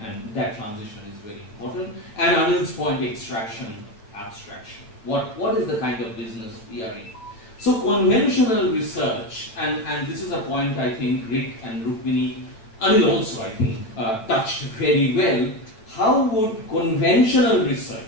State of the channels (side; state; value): right; late; 9.1 ms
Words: that transition is very important. And Anil's point, extraction, abstraction. What is the kind of business we are in? So conventional research, and this is a point I think Rick and Rukmini, Anil also I think, touched very well. How would conventional